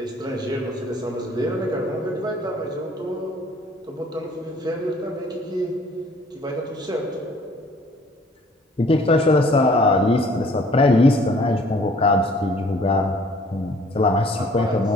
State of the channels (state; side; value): normal; both; correlation 0.56